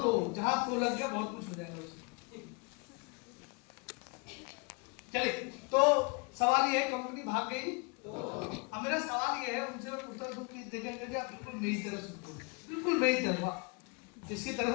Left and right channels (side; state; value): right; quieter; 32.1 dB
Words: जहां तो लग गया बहुत कुछ हो जाएगा उसमें। चलिए, तो सवाल ये है, कंपनी भाग गई तो अब मेरा सवाल ये है उनसे, मैं पूछता हूँ कि देखेंगे कि आप बिल्कुल मेरी तरह सुनते हो, बिल्कुल मेरी तरह। किसकी तरह